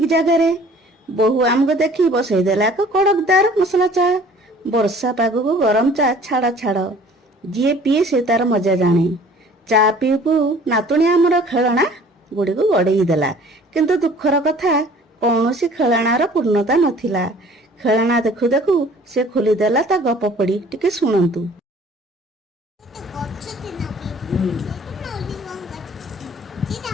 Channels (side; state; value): both; normal; correlation 0.51